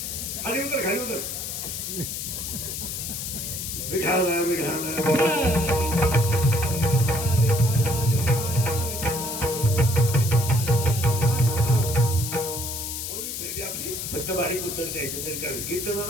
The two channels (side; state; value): left; noise; hiss, 5 dB below the sound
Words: खाली उतर, खाली उतर. विठाला विठाला फक्त बारीक उत्तर द्यायचं तरी करायचं.